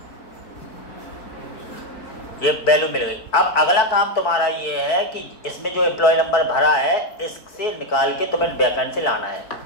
ये वैल्यू मिल गई। अब अगला काम तुम्हारा ये है कि इसमें जो एम्प्लॉय नंबर भरा है इससे निकाल के तुम्हें बैकएंड से लाना है।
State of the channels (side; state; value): right; late; 4.6 ms